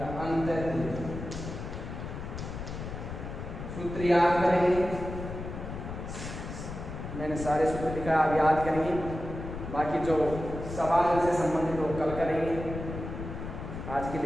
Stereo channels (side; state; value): left; noise; rumble, 8 dB below the sound